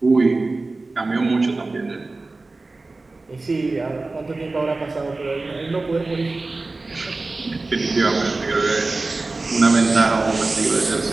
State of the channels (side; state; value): left; quieter; 3.4 dB